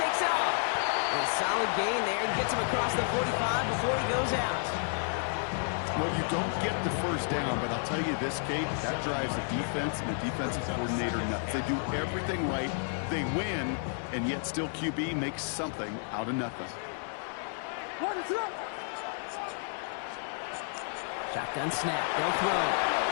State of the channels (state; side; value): silent; right; 57 dB below the other